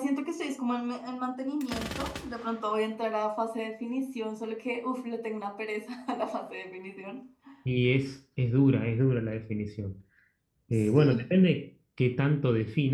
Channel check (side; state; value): both; identical; correlation 1.00